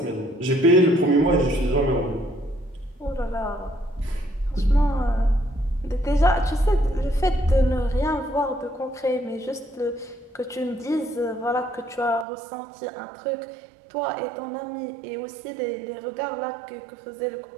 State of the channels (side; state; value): left; drops out; at 12.2 s